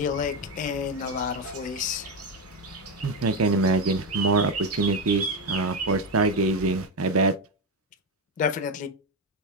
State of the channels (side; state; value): both; normal; correlation 0.09